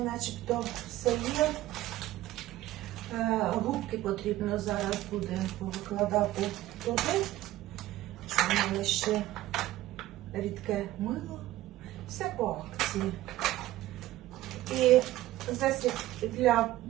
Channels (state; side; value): quieter; left; 15.6 dB